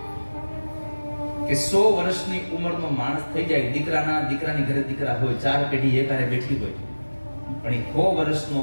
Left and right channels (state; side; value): inverted; both; correlation -1.00